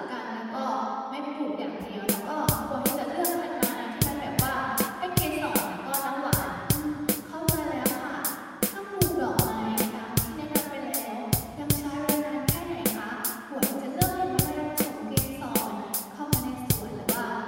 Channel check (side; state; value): both; identical; correlation 1.00